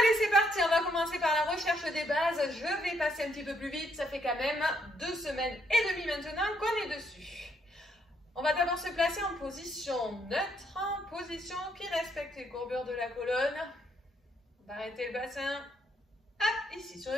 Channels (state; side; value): normal; both; correlation 0.73